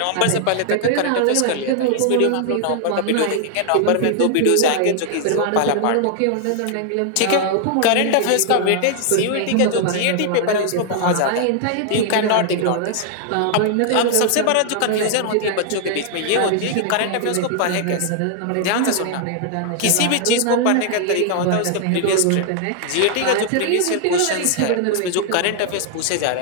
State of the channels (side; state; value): both; different; correlation 0.00